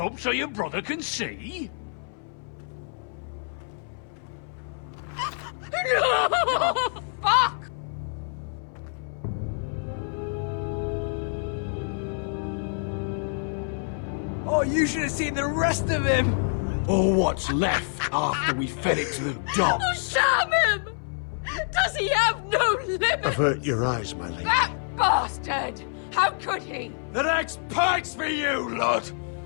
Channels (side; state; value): right; silent; 60 dB below the other